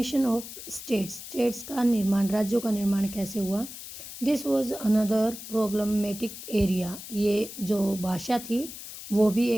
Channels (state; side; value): noise; left; hiss, 12 dB below the sound